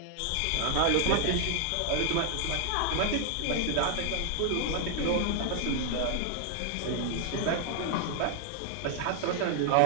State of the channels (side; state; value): both; different; correlation 0.00